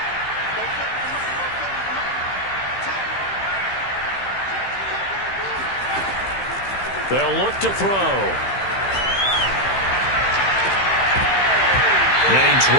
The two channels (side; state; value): right; late; 15 ms